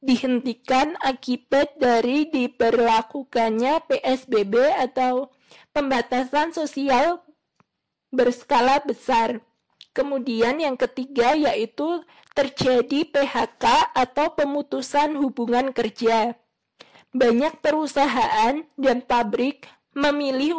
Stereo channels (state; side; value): identical; both; correlation 1.00